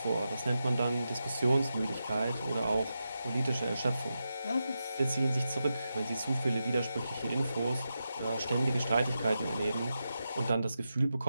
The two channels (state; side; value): inverted; both; correlation -0.89